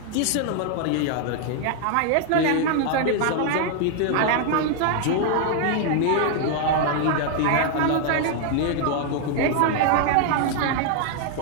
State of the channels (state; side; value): different; both; correlation 0.00